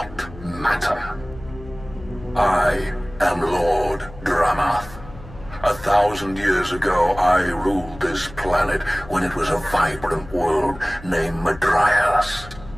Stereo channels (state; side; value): noise; left; hum, 17 dB below the sound